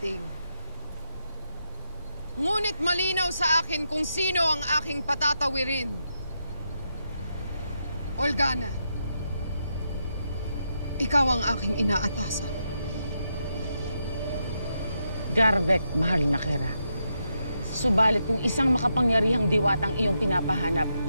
Ngunit malinaw sa akin kung sino ang aking patatawirin. Olgana, ikaw ang aking inaatasan. Garvek, mahal na Kera. Subalit kung isang makapangyarihang diwatang iyong pinapahanap,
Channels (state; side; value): inverted; both; correlation -0.83